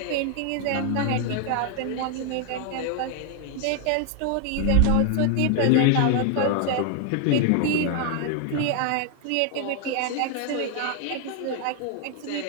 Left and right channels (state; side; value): different; both; correlation 0.00